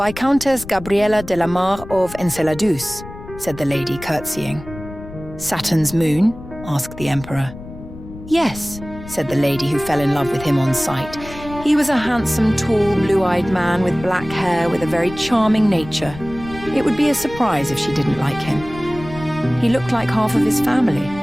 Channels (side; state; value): left; noise; rumble, 14 dB below the sound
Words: Gabriella de la Mar of Enceladus," said the lady, curtsying. "Saturn's moon?" asked the Emperor. "Yes," said the lady, who fell in love with him on sight. He was a handsome, tall, blue-eyed man with black hair with a very charming nature. It would be a surprise if she didn't like him. He looked like half of his family.